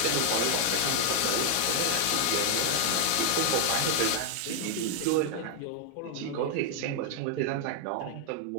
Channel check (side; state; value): both; different; correlation 0.00